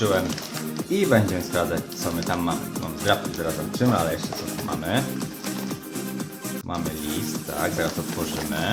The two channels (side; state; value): both; identical; correlation 1.00